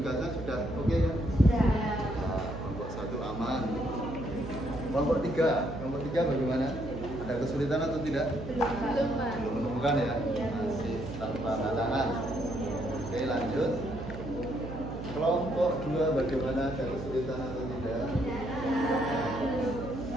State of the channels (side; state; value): right; noise; hum, 9 dB below the sound